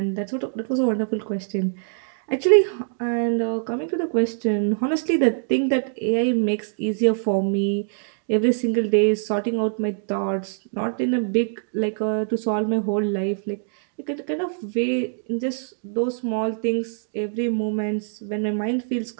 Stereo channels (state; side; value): silent; left; digital silence